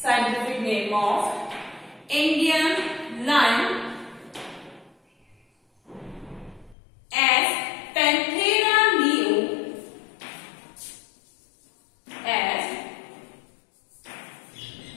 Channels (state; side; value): drops out; right; at 6.8 s